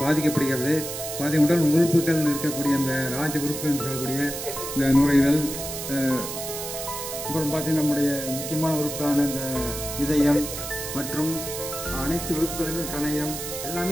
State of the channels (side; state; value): right; noise; hiss, 7 dB below the sound